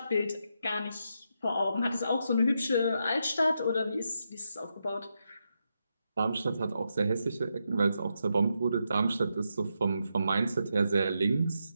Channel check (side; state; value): both; inverted; correlation -0.83